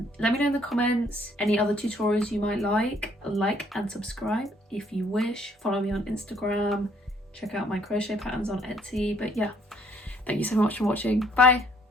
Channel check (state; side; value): normal; both; correlation 0.64